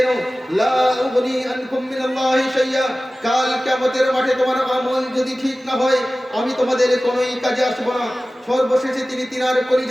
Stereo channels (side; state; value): both; normal; correlation 0.96